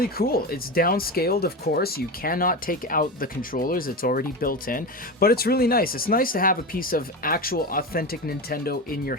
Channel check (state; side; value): normal; both; correlation 0.21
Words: cool. It's downscaled, of course. You cannot take out the controllers. It's already built in, but it's really nice. It's nice to have a piece of actual authentic Nintendo in your